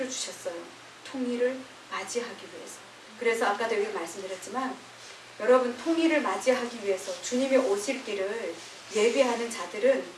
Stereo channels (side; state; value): both; identical; correlation 1.00